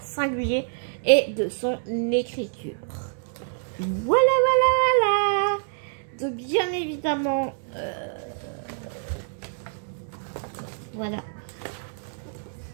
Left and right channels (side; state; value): left; silent; digital silence